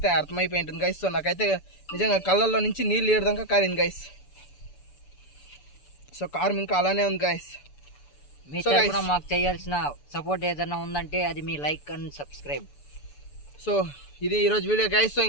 అర్థమైపోయి ఉంటుంది గైస్. సో నాకైతే నిజంగా కళ్ళల్లో నుంచి నీళ్ళు ఏడదాకా కారింది గైస్. సో కారం ఇంకా అలానే ఉంది గైస్. మీ తరపున మాకు చేయాల్సిన సపోర్ట్ ఏదైనా ఉందంటే అది మీ లైక్ అండ్ సబ్స్క్రైబ్. సో ఇది ఈరోజు వీడియో గైస్. సో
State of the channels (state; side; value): late; right; 6.9 ms